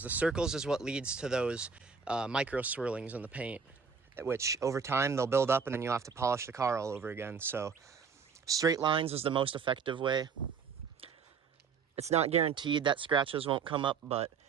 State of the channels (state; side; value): quieter; left; 5.8 dB